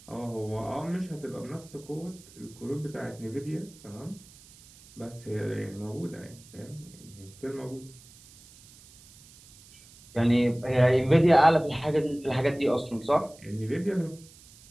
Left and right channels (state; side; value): noise; right; hiss, 23 dB below the sound